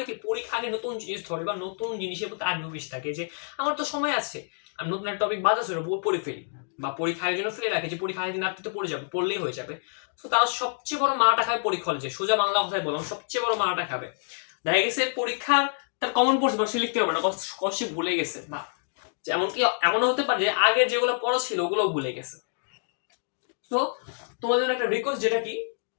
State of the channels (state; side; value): silent; right; 58 dB below the other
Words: কি পরীক্ষা আগে নতুন জিনিস ধরে বা নতুন জিনিসের প্রতি আগ্রহ বেশি থাকে, যে আমার তো সময় আছে, আমি নতুন একটা টপিক বাদ আছে পড়ে ফেলি, বা পরীক্ষা আগের জন্য ফেলে রাখে যে পরীক্ষা আগের দিন রাত্রিতে পড়ে যাবে, পড়লেই হয়ে যাবে। তো তারা সবচেয়ে বড় মারাটা খাবে পরীক্ষা হলে, যে সোজা বাংলা কথায় বললাম, সবচেয়ে বড় মারাটা খাবে। দেখা গেছে পরীক্ষার তার কমন পড়ছে বা সে লিখতে পারবে না, কষ্টে ভুলে গেছে, বা এমনকি এমনও হতে পারে যে আগের যেগুলো পড়া ছিল ওগুলোও ভুলে গেছে। তো তোমাদের একটা রিকোয়েস্ট, যেটা কি,